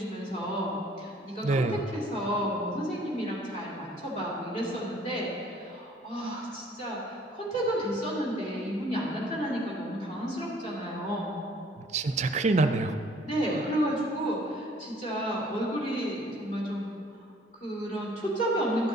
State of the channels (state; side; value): normal; both; correlation 0.57